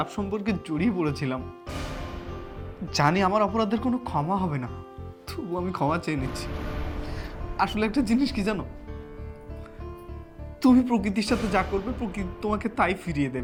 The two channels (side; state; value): both; identical; correlation 1.00